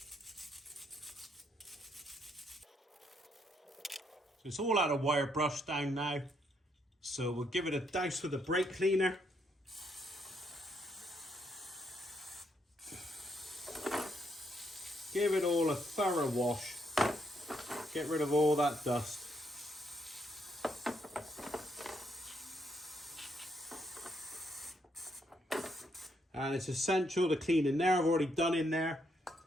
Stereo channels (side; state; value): both; normal; correlation 0.75